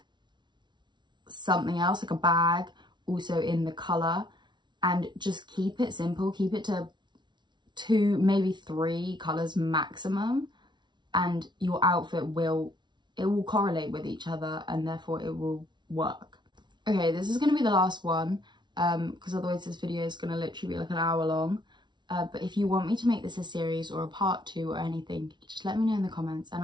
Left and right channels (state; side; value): late; left; 0.22 ms